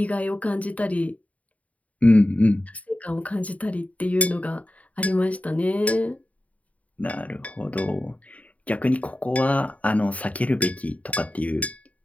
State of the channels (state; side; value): late; right; 0.069 ms